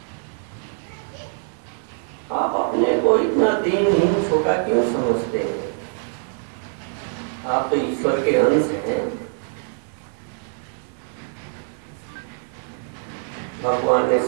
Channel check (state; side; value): silent; left; 59 dB below the other